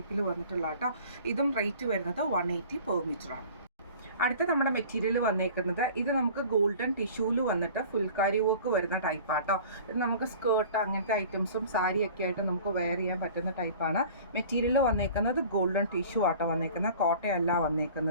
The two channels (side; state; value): both; inverted; correlation -0.44